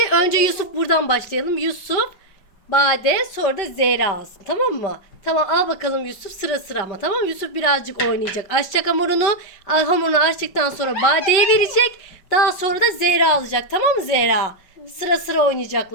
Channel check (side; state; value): right; late; 5.2 ms